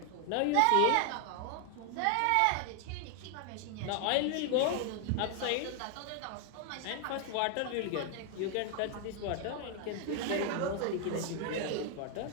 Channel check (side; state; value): both; different; correlation 0.00